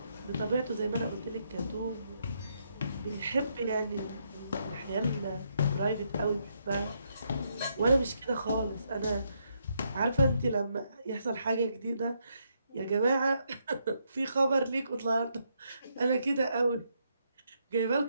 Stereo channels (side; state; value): both; inverted; correlation -0.77